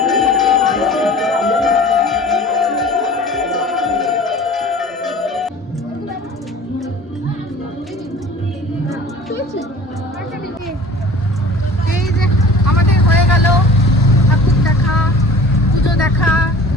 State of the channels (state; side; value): normal; both; correlation 0.43